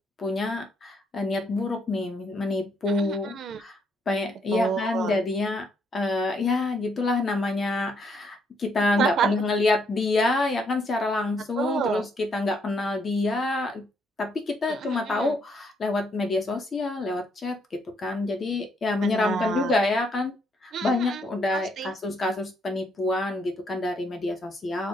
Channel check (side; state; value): both; normal; correlation 0.72